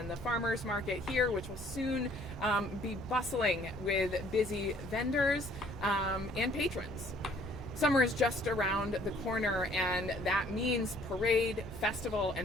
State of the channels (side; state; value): both; normal; correlation 0.59